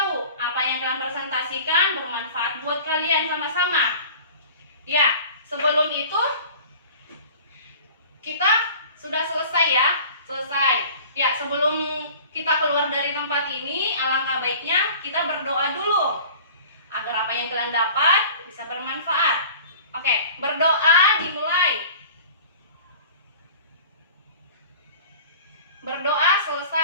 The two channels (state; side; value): inverted; both; correlation -0.43